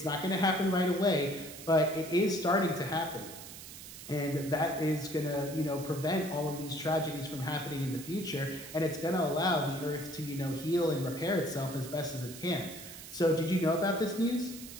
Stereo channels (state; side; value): noise; right; hiss, 13 dB below the sound